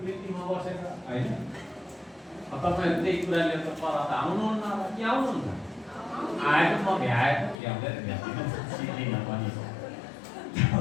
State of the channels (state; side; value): drops out; right; at 7.6 s